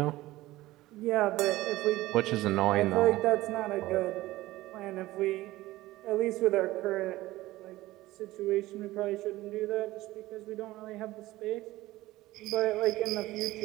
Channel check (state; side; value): quieter; left; 17.5 dB